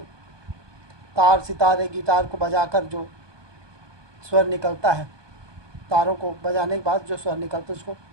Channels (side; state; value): left; late; 1.2 ms